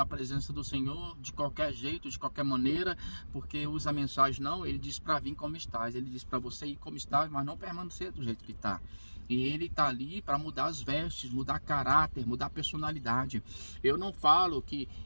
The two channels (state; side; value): inverted; both; correlation -1.00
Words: presença do Senhor de qualquer jeito, de qualquer maneira, porque usa a mensagem, não, ele diz para vir como estás, ele diz para você ir como estás, mas não permanecer do jeito que está. E ele está ali para mudar as vestes, mudar caráter, mudar personalidade. Eu não falo que